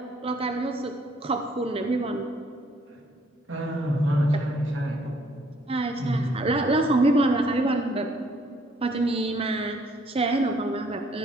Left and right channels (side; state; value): both; normal; correlation 0.65